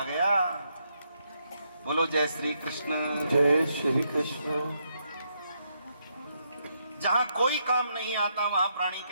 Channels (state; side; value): inverted; both; correlation -0.78